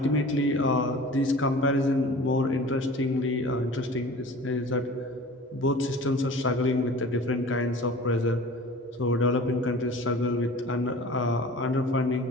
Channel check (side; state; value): both; normal; correlation 0.41